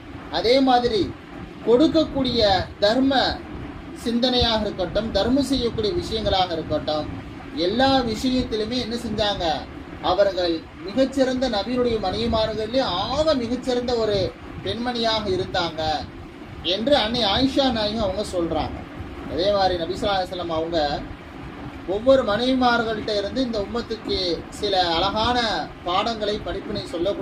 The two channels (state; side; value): identical; both; correlation 1.00